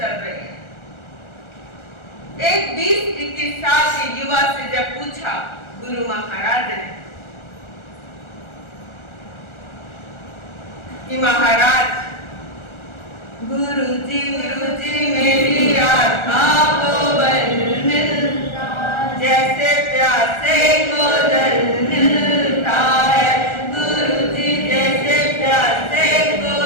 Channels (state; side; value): late; right; 1.4 ms